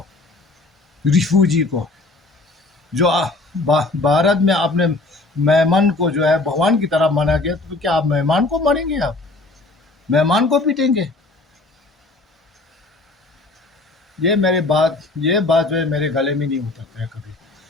रिफ्यूजी को, जो भारत में अपने मेहमान को जो है भगवान की तरह माना गया। तो क्या आप मेहमान को मारेंगे? आप मेहमान को पीटेंगे? ये बात जो है मेरे गले में नहीं उतरता है कभी।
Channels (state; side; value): quieter; right; 3.1 dB